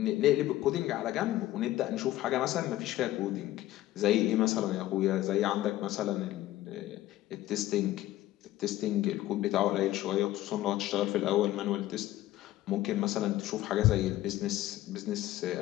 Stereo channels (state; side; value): quieter; right; 15.2 dB